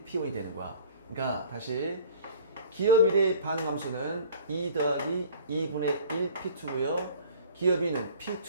P1이 되는 거야. 그러니까 다시 기업 1의 반응 함수는 2 더하기 2분의 1 P2고요. 기업 2는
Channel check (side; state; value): both; inverted; correlation -0.47